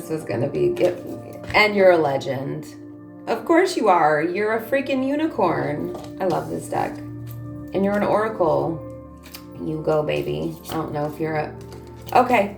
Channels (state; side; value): identical; both; correlation 1.00